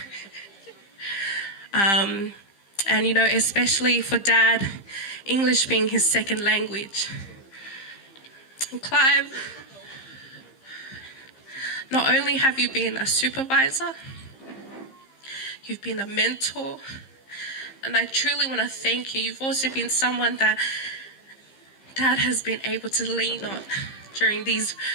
And especially for Dad, English being his second language. And Clive, not only have you been a supervisor, you've been a mentor, and I truly want to thank you. You've also been someone that Dad has been able to lean on during these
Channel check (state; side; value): late; right; 15 ms